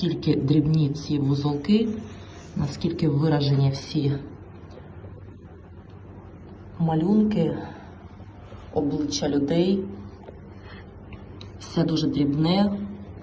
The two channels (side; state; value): both; identical; correlation 1.00